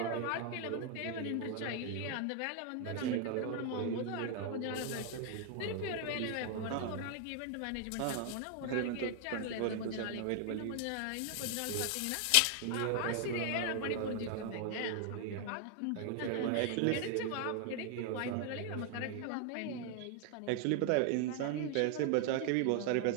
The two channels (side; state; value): both; different; correlation 0.00